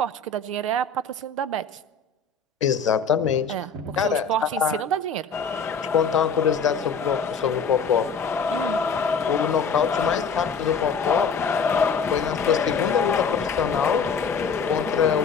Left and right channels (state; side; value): quieter; right; 5.0 dB